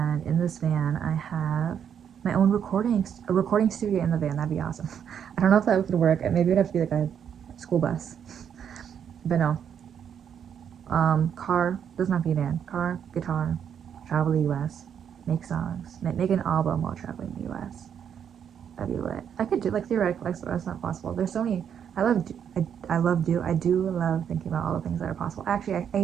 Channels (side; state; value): left; quieter; 8.3 dB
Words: in this van, I have my own a recording studio in the van. That'd be awesome. I don't know if that would work. Maybe it'd have to be like a school bus. But no. Car, doesn't have to be a van. Car, guitar, travel the US, make songs, make an album while traveling the US. That'd be lit. I could do, like, theoretically, that's not possible. There's so many, I do love thinking about all the things that are possible. Actually, I